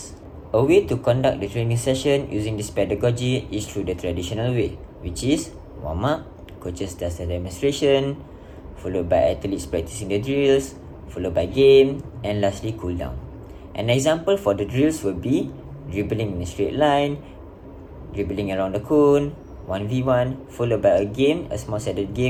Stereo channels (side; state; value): both; identical; correlation 1.00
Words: A way to conduct the training session using this pedagogy is through the traditional way, which is warm-up, coaches does the demonstration, followed by athletes practicing the drills, followed by game, and lastly cool down. An example for the drills will be dribbling in a straight line, dribbling around the cone, 1v1, followed by a game, a small-sided